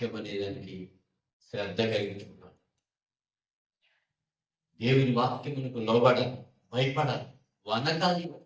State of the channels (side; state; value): both; identical; correlation 1.00